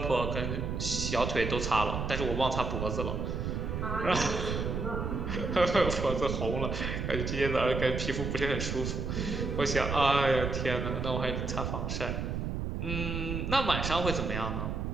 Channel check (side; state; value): right; noise; rumble, 2 dB below the sound